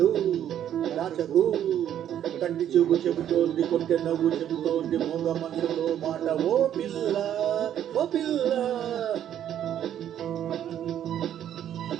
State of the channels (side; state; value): left; quieter; 10.5 dB